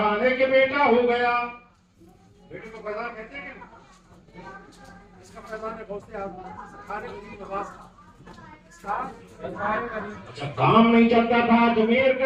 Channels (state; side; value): identical; both; correlation 1.00